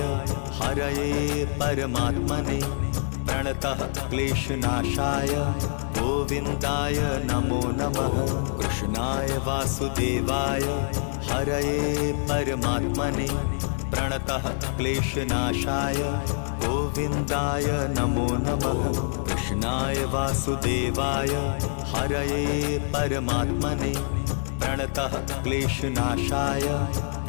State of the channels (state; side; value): silent; right; digital silence